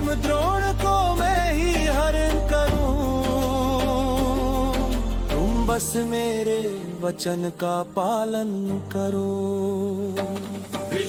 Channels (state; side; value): identical; both; correlation 1.00